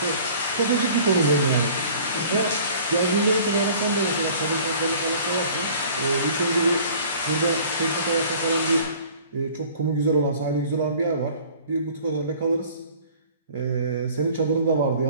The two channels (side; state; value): both; inverted; correlation -0.49